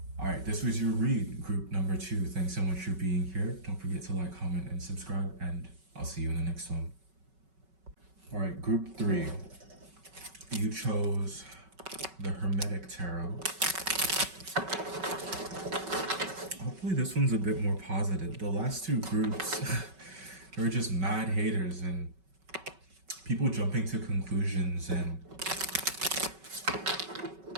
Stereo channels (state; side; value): late; left; 5.3 ms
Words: All right, this was your read, group number 2. Thanks so much for being here. Don't forget to like, comment, and subscribe, and I'll see you in the next one. All right, group 3. You chose the Hermetic Tarot. Hopefully this one's a bit more positive. The last 2 groups, they were just mad haters and people jumping to conclusions and